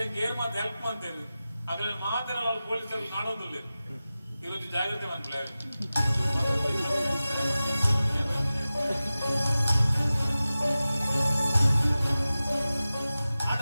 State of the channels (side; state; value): both; inverted; correlation -0.95